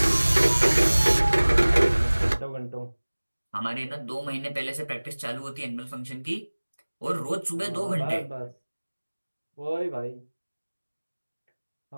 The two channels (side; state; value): both; inverted; correlation -1.00